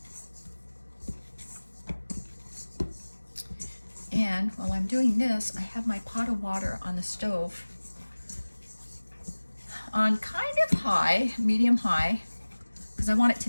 And while I'm doing this, I have my pot of water on the stove on kind of high, medium high, because I want it to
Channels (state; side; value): inverted; both; correlation -1.00